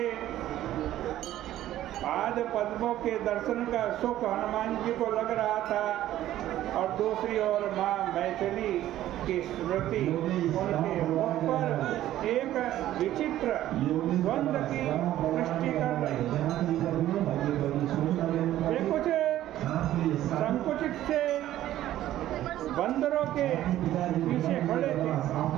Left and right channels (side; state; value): left; quieter; 13.4 dB